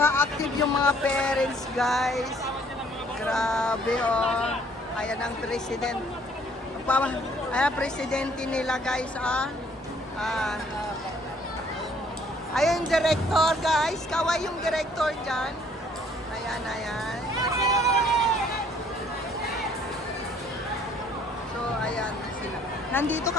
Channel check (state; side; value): normal; both; correlation 0.60